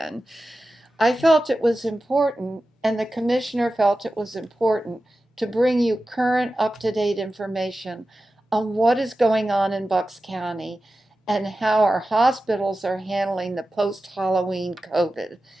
I felt it was important, and the Commissioner felt it was important to bring you current, up-to-date information on what is going on in Bucks County and how our hospitals are handling the post-Halloween COVID.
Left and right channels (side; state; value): both; normal; correlation 0.94